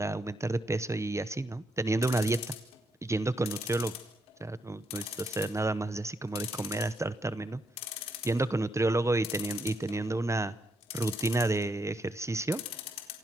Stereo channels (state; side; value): normal; both; correlation 0.77